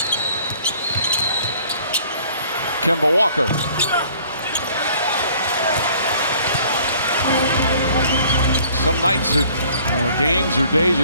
Kemba Walker. Some nights or games or days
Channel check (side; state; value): both; inverted; correlation -0.55